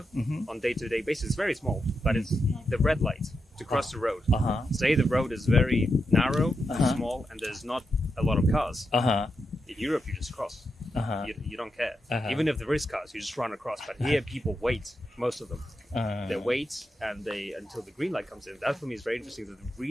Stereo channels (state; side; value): normal; both; correlation 0.86